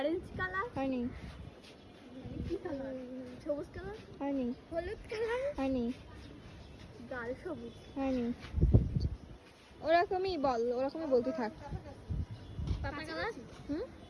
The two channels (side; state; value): both; identical; correlation 1.00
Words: কালার, হানি, কি কালার, সবুজ কালার, হানি, হলুদ কালার, হানি, গাঢ় সবুজ, হানি। ওরকমই বল, ওরকমই বলতে থাক। পাতা কালার, হুম,